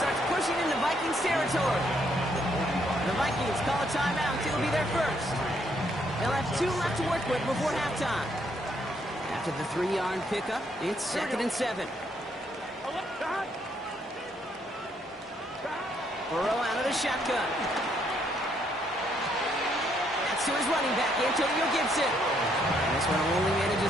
pushing into Vikings territory. The Vikings call a timeout. It'll be their 1st. They'll have 2 left to work with before halftime. After the 3-yard pickup, it's 2nd and 7. Burrow out of the shotgun. That's to his running back, Antonio Gibson. This one only manages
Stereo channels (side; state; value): both; normal; correlation 0.72